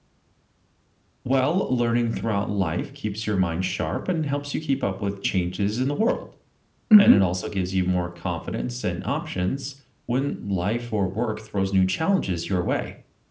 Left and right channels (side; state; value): both; identical; correlation 1.00